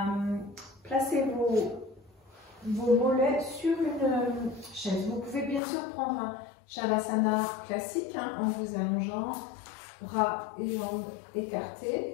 placer vos mollets sur une chaise. Vous pouvez bien sûr prendre un Shavasana classique en vous allongeant, bras et jambes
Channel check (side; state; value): right; drops out; at 5.6 s